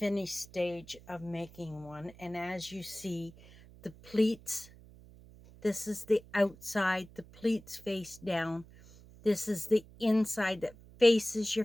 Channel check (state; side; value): noise; right; hum, 21 dB below the sound